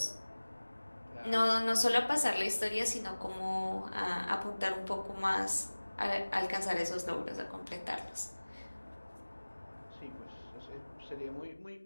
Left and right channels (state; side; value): inverted; both; correlation -1.00